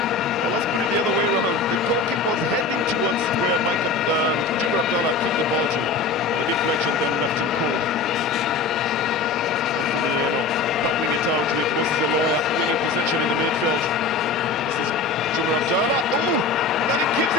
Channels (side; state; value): right; quieter; 4.3 dB